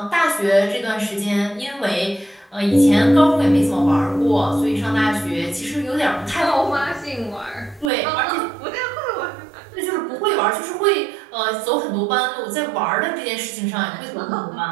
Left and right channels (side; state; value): left; drops out; at 7.9 s